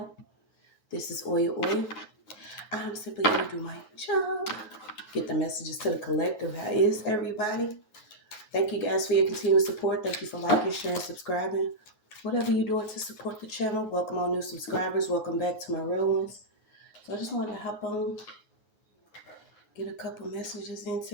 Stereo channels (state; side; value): late; right; 9.4 ms